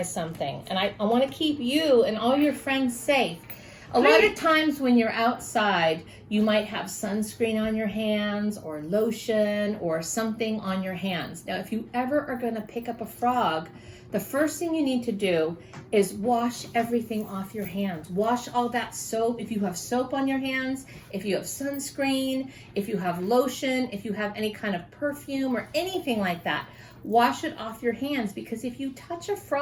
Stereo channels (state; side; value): identical; both; correlation 1.00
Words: something, and I want to keep you and all your friends safe. A lot of times when you're outside, you might have sunscreen on your hands or lotion or something on your hands. Now, if you ever are going to pick up a frog, the first thing you need to do is wash everything off your hands. Wash all that soap. If you have soap on your hands, if you have sunscreen, if you have lotion, if you have any kind of perfume or anything like that, wash it off your hands, because if you touch a